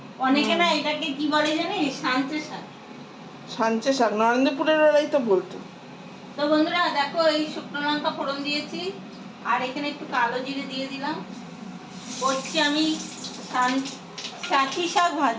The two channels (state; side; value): identical; both; correlation 1.00